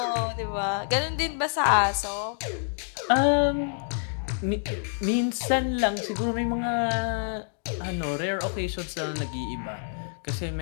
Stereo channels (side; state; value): right; silent; digital silence